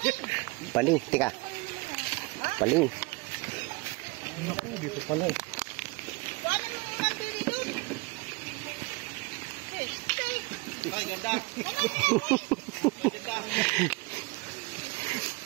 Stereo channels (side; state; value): left; quieter; 26.1 dB